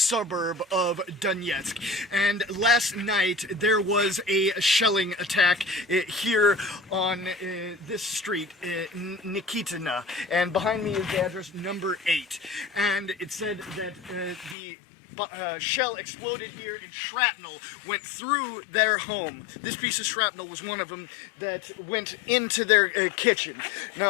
of Donetsk. And last night, there was a shelling attack here on this street, Nikitina. And behind me is the address number 8. And it said that the shell exploded here and shrapnel went through their home. This piece of shrapnel was one of them that went into their kitchen.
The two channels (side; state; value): right; drops out; at 14.6 s